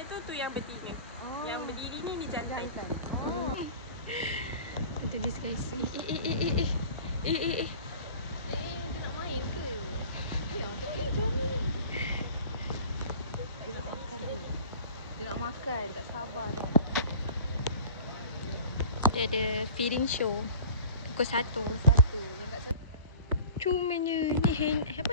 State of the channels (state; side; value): inverted; both; correlation -0.42